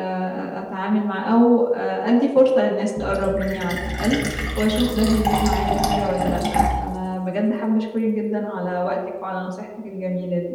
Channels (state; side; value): identical; both; correlation 1.00